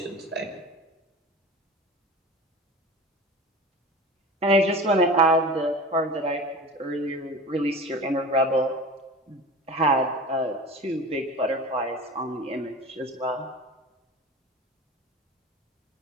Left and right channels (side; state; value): both; normal; correlation 0.34